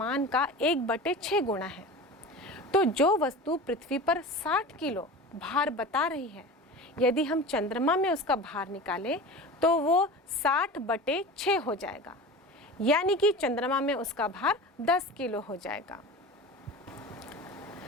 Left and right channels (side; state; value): both; normal; correlation 0.33